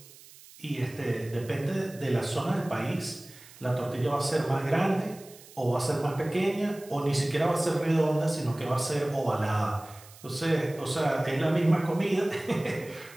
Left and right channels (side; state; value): right; noise; hiss, 21 dB below the sound